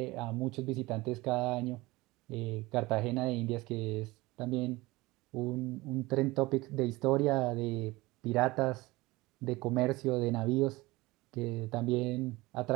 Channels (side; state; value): left; quieter; 21.1 dB